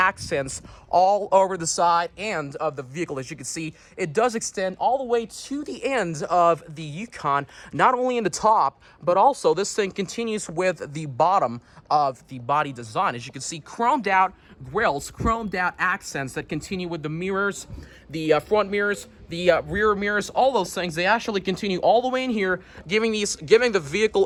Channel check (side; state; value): both; identical; correlation 1.00